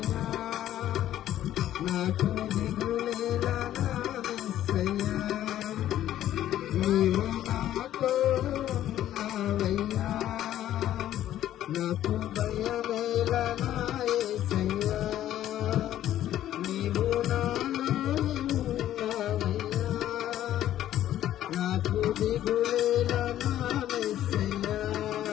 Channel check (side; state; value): right; quieter; 12.4 dB